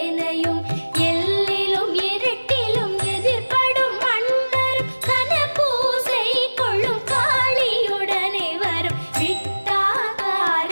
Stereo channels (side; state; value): both; inverted; correlation -1.00